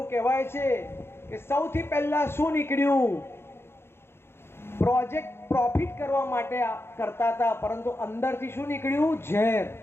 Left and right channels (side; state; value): right; late; 0.12 ms